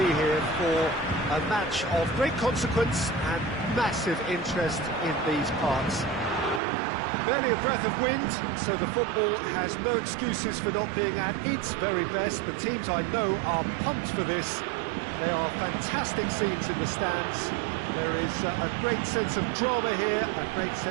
here for a match of great consequence and massive interest in these parts. Barely a breath of wind, so the football has no excuses for not being at its very best. The teams I know are pumped for this. They are fantastic scenes in the stands. There is a great sense of drama here, a great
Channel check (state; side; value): drops out; left; at 6.6 s